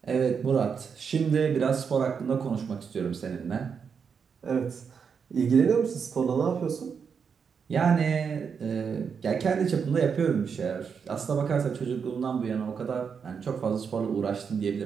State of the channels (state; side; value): quieter; left; 6.4 dB